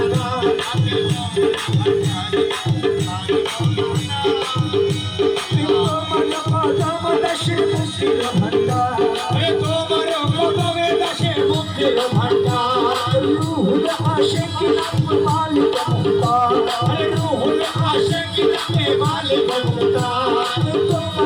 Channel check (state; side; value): identical; both; correlation 1.00